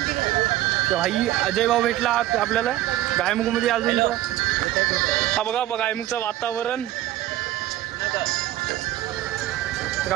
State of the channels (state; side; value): quieter; left; 14.4 dB